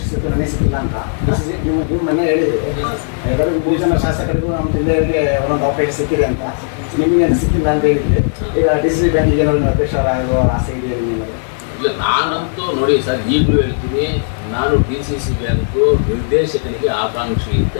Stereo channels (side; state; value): right; silent; digital silence